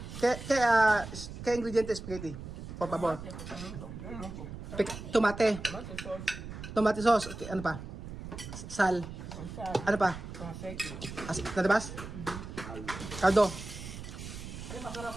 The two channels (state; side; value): noise; right; rumble, 10 dB below the sound